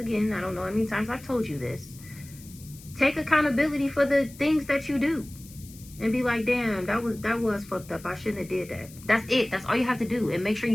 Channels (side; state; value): left; noise; hiss, 20 dB below the sound